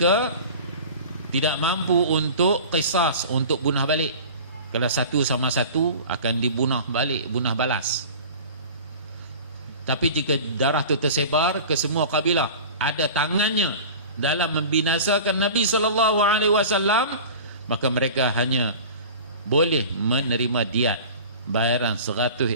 tidak mampu untuk qisas, untuk bunuh balik. Kalau satu sama satu akan dibunuh balik, bunuh balas. Tapi jika darah itu tersebar ke semua kabilah, ada tangannya dalam membinasakan Nabi SAW, maka mereka hanya boleh menerima diat, bayaran 100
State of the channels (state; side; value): inverted; both; correlation -0.38